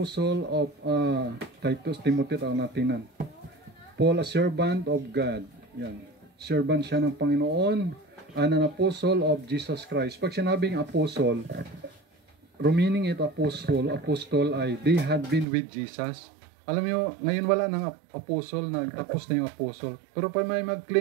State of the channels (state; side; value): drops out; left; at 15.5 s